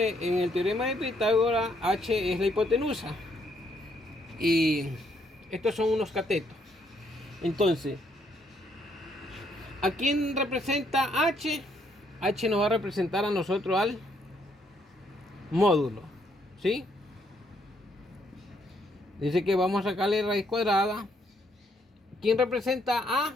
en el teorema de Pitágoras, h es la hipotenusa y estos son unos catetos. Entonces, ¿a quién representa h? H nos va a representar a nosotros al módulo, ¿sí? Dice que vamos a sacarle raíz cuadrada. ¿Quién representa a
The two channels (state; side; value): normal; both; correlation 0.71